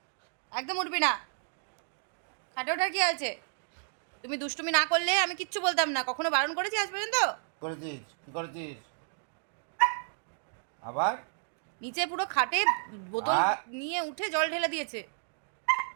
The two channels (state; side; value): silent; left; digital silence